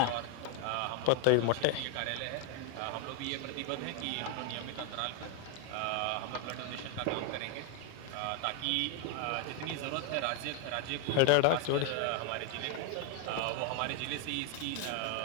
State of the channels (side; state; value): both; different; correlation 0.01